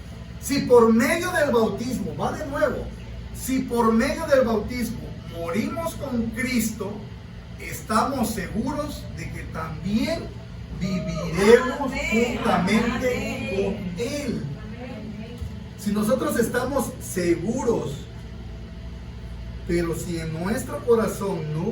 Si por medio del bautismo, va de nuevo, si por medio del bautismo morimos con Cristo, estamos seguros de que también viviremos juntamente con Él. Si nosotros estamos seguros, pero si en nuestro corazón no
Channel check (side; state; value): both; identical; correlation 1.00